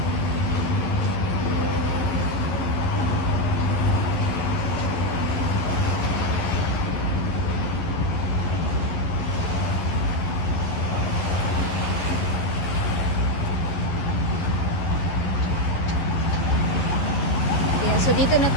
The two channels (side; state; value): right; late; 11 ms